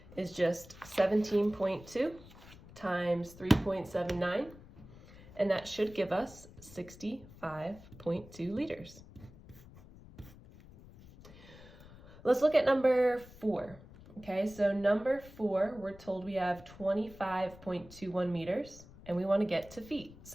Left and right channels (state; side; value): noise; left; rumble, 20 dB below the sound